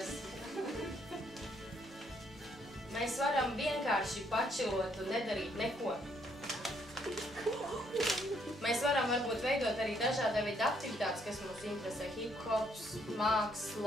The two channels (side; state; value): both; normal; correlation 0.70